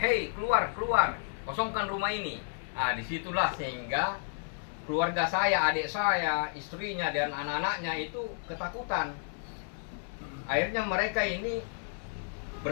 keluar, kosongkan rumah ini. Nah, disitulah sehingga keluarga saya, adik saya, istrinya dan anak-anaknya itu ketakutan. Akhirnya mereka ini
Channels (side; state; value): right; silent; 57 dB below the other